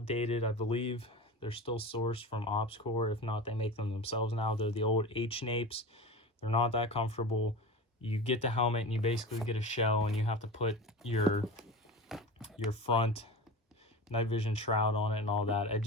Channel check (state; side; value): normal; both; correlation 0.30